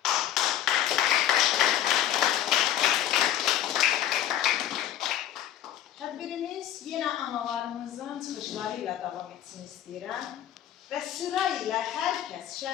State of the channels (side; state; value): right; quieter; 11.4 dB